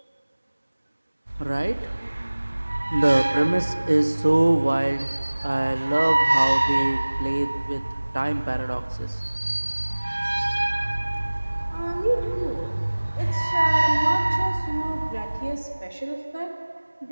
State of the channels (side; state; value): both; inverted; correlation -1.00